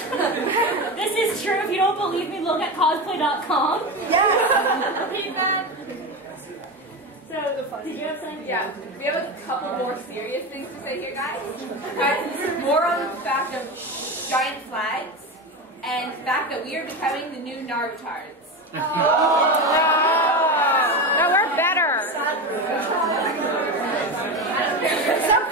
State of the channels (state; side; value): normal; both; correlation 0.20